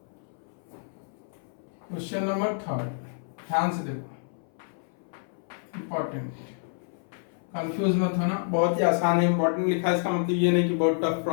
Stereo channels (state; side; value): silent; right; 59 dB below the other